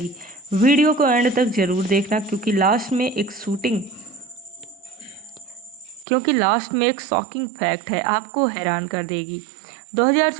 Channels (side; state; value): left; drops out; at 6.1 s